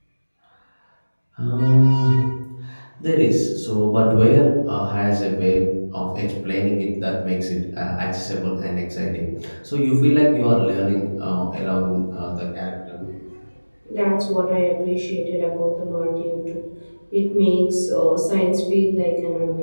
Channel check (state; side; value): inverted; both; correlation -1.00